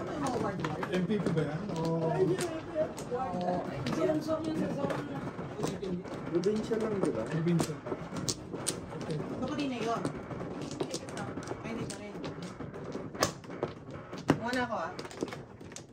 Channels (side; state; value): both; identical; correlation 1.00